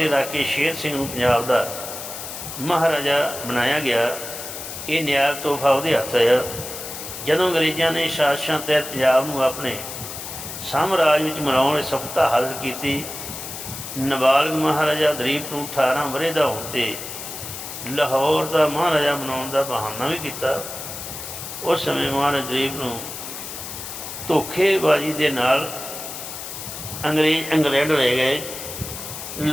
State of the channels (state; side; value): noise; left; hiss, 9 dB below the sound